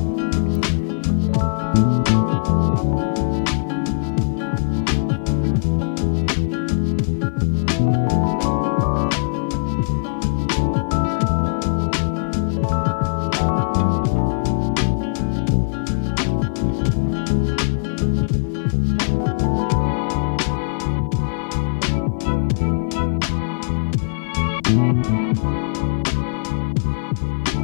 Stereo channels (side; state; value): right; silent; 65 dB below the other